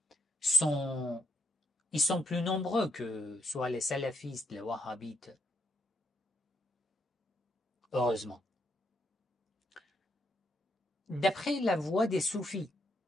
ils sont plus nombreux que soit les salafistes, les wahhabites, heureusement. D'après la voie des soufis,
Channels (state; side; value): normal; both; correlation 0.76